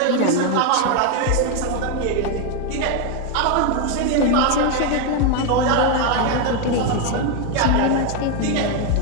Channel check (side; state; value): both; different; correlation 0.01